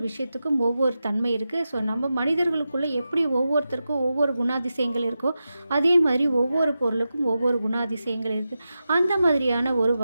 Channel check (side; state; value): both; inverted; correlation -0.91